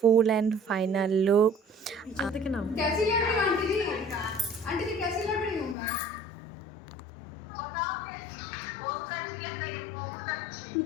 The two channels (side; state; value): right; drops out; at 5.8 s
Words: অ্যান্ড ফাইনাল লুক। দেখে নাও। कैसी लग रही हूँ आंटी जी? आंटी जी कैसी लग रही हूँ मैं?